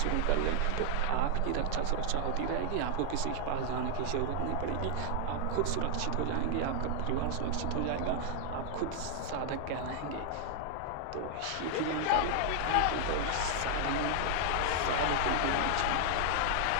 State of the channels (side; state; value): both; different; correlation 0.00